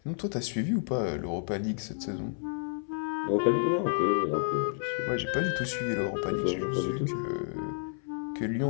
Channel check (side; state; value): right; silent; 58 dB below the other